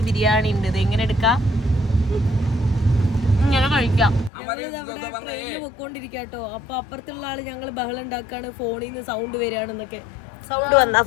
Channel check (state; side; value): drops out; right; at 4.3 s